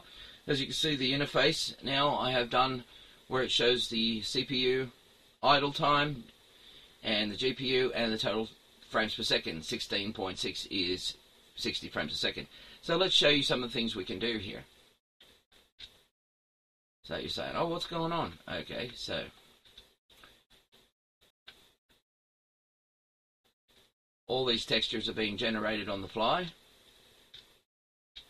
As you can see, the interface now I have done where it shows the CPU idle time and the GPU and the total frames per second. 16.6 is 60 frames a second. So let's show you some of the things we can do here. So you're saying, oh, what's going on? Okay, so all these textures are being generated on the fly.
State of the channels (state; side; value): identical; both; correlation 1.00